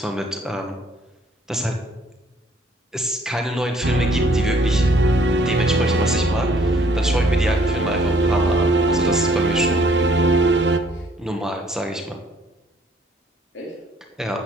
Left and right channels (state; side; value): normal; both; correlation 0.62